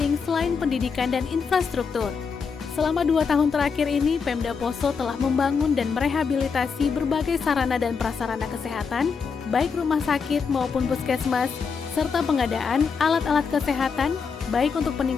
selain pendidikan dan infrastruktur. Selama 2 tahun terakhir ini, Pemda Poso telah membangun dan merehabilitasi berbagai sarana dan prasarana kesehatan, baik rumah sakit maupun puskesmas, serta pengadaan alat-alat kesehatan, baik untuk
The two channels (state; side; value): quieter; right; 5.6 dB